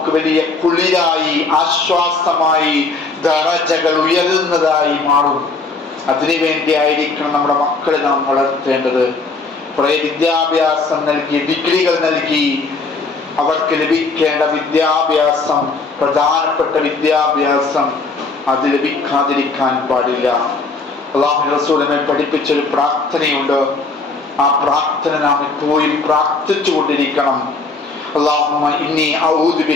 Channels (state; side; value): quieter; right; 3.9 dB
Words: വലിയ കുളിരായി, ആശ്വാസമായി, ദറജകൾ ഉയരുന്നതായി മാറും. അതിനുവേണ്ടി ആയിരിക്കണം നമ്മുടെ മക്കളെ നാം വളർത്തേണ്ടത്. കുറെ വിദ്യാഭ്യാസം നൽകി, ഡിഗ്രികൾ നൽകി അവർക്ക് ലഭിക്കേണ്ട വിദ്യാഭ്യാസം, പ്രധാനപ്പെട്ട വിദ്യാഭ്യാസം അത് ലഭിക്കാതിരിക്കാൻ പാടില്ല. അല്ലാഹു റസൂലിനെ പഠിപ്പിച്ചൊരു പ്രാർത്ഥനയുണ്ട്. ആ പ്രാർത്ഥന നാം എപ്പോഴും പ്രാർത്ഥിച്ചു കൊണ്ടിരിക്കണം. അല്ലാഹുമ്മ ഇന്നി അഊദു